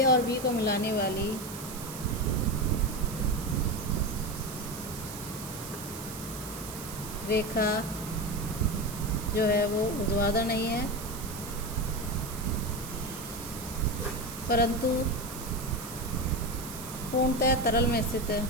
और B को मिलाने वाली रेखा जो है वो ऊर्ध्वाधर नहीं है परंतु पूर्णतः तरल में स्थित है।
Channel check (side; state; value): right; noise; hiss, 11 dB below the sound